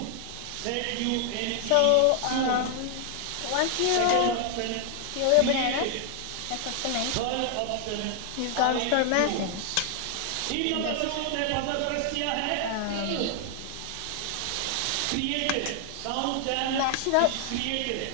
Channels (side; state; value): both; different; correlation 0.00